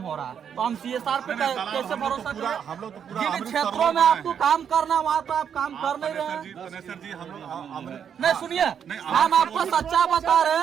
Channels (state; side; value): quieter; left; 8.0 dB